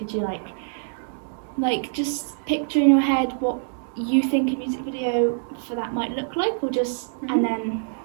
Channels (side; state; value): left; silent; 59 dB below the other